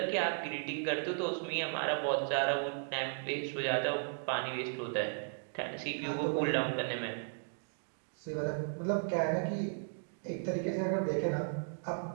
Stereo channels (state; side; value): silent; left; digital silence